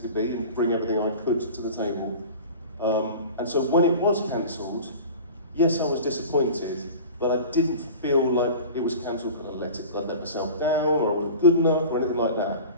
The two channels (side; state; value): both; inverted; correlation -0.38